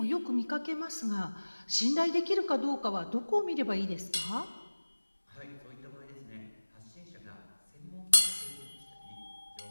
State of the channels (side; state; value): both; inverted; correlation -1.00